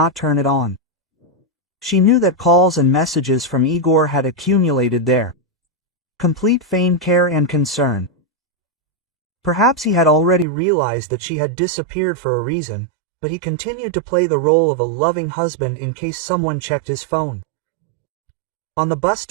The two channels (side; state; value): left; drops out; at 10.5 s